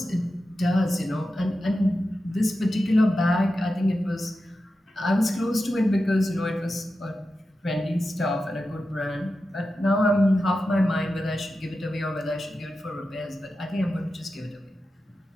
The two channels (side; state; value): both; normal; correlation 0.91